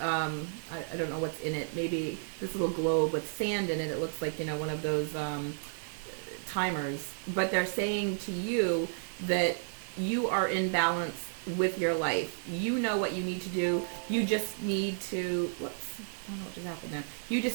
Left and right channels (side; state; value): left; silent; digital silence